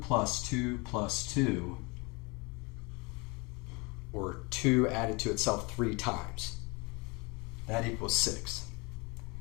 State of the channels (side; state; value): right; quieter; 27.9 dB